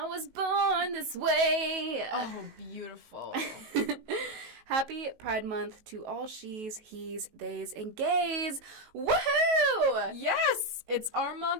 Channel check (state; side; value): late; left; 19 ms